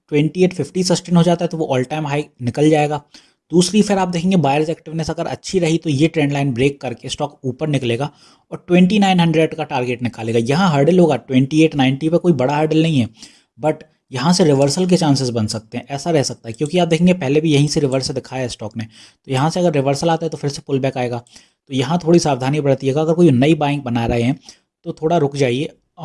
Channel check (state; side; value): identical; both; correlation 1.00